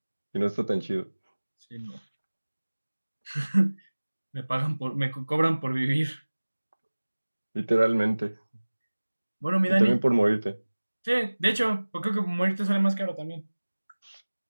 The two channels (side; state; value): both; inverted; correlation -1.00